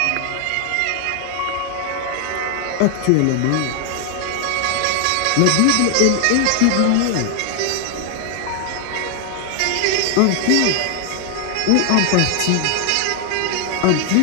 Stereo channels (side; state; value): both; different; correlation 0.00